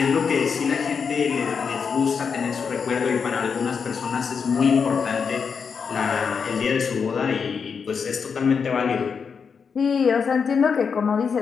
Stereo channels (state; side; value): quieter; right; 6.0 dB